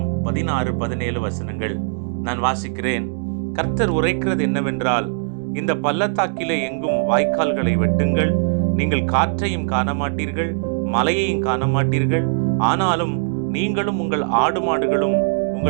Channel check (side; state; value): left; silent; digital silence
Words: 16-17 வசனங்கள். நான் வாசிக்கிறேன். கர்த்தர் உரைக்கிறது என்னவென்றால், இந்த பள்ளத்தாக்கிலே எங்கும் வாய்க்கால்களை வெட்டுங்கள். நீங்கள் காற்றையும் காண மாட்டீர்கள், மலையையும் காண மாட்டீர்கள். ஆனாலும் நீங்களும் உங்கள் ஆடு மாடுகளும்